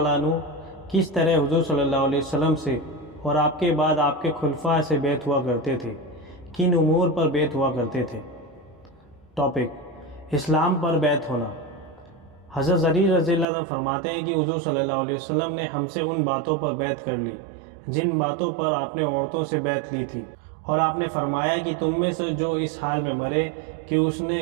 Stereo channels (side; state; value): left; drops out; at 13.5 s